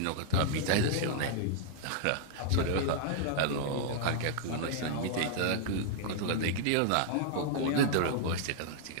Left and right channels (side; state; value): both; different; correlation -0.01